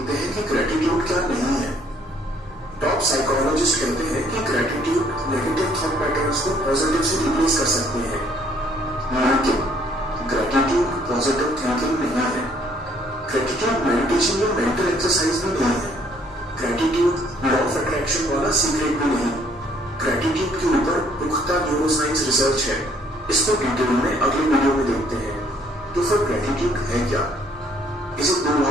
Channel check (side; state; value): both; normal; correlation 0.63